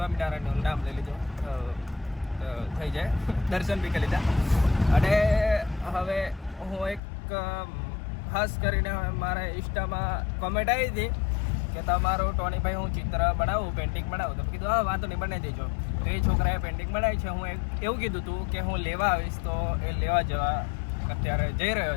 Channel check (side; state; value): right; drops out; at 7.0 s